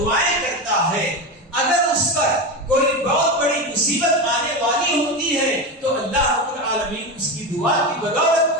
کرتا ہے اگر اس پر کوئی بہت بڑی مصیبت آنے والی ہوتی ہے تو اللہ رب العالمین اس کی دعا کی بدولت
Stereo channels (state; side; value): normal; both; correlation 0.18